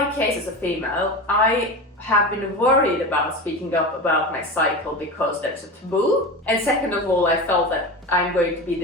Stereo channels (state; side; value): normal; both; correlation 0.26